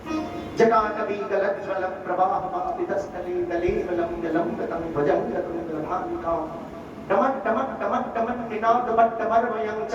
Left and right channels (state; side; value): identical; both; correlation 1.00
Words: जटाकवीगलज्ज्वल प्रवाहमापितस्थले दलेवलं जलंगतं ध्वजंगतुङ्गभामिकां डमट्टमट्टमट्टमट् निनादपट्टमर्वयं